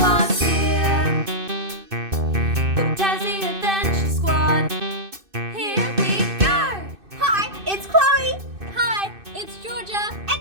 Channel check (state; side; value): late; left; 2.6 ms